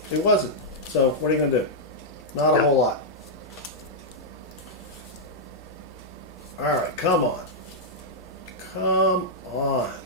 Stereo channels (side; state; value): both; normal; correlation -0.07